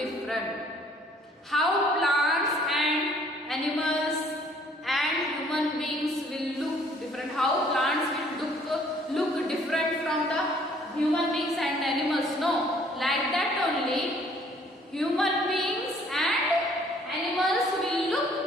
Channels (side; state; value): both; normal; correlation 0.60